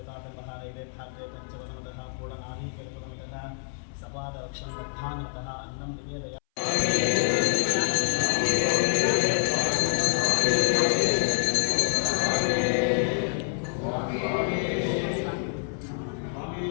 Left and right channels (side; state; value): right; silent; 60 dB below the other